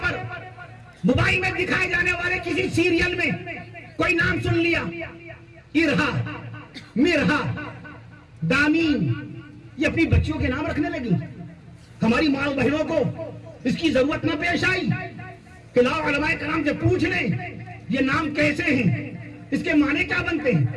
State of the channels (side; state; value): both; identical; correlation 1.00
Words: پر، موبائل میں دکھائے جانے والے کسی سیریل میں کوئی نام سن لیا، ارہا، مرہا، دامین، یہ اپنی بچیوں کے نام رکھنے لگی۔ ہماری ماں بہنوں کو اس کی ضرورت نہ پیش آئی کہ لاؤ علماء کرام سے پوچھ لیں یہ نام کیسے ہیں، اس کے معنی کیا بنتے